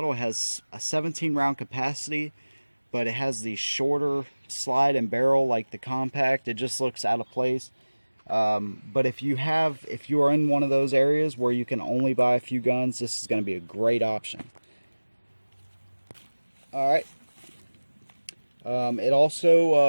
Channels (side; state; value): both; inverted; correlation -1.00